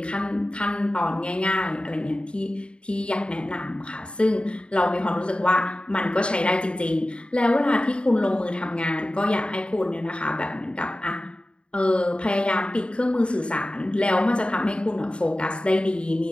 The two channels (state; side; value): late; right; 0.055 ms